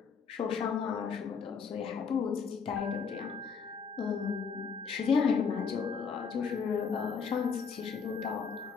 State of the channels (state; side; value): quieter; right; 5.8 dB